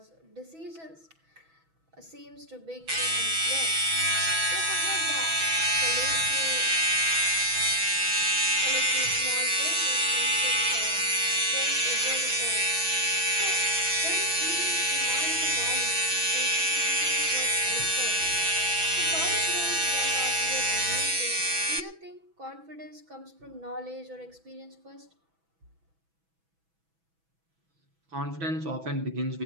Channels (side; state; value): left; late; 6.1 ms